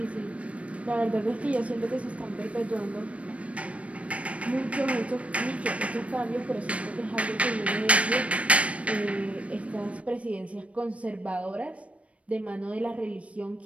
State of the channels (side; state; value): left; late; 0.064 ms